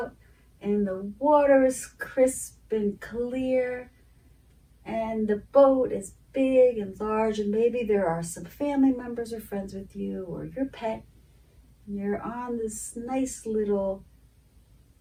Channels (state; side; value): identical; both; correlation 1.00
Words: and the water is crisp and clear and the boat is big and large, and maybe there are some family members or friends with you or your pet, and you're on this nice little